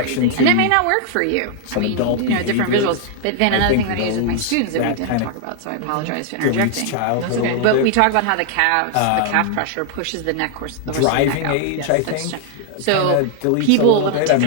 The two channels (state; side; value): different; both; correlation 0.00